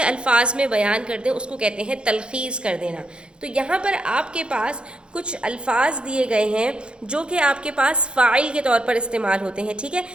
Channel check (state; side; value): late; left; 0.054 ms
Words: الفاظ میں بیان کر دیں، اس کو کہتے ہیں تلخیص کر دینا۔ تو یہاں پر آپ کے پاس کچھ الفاظ دیے گئے ہیں جو کہ آپ کے پاس فاعل کے طور پر استعمال ہوتے ہیں۔ ٹھیک ہے،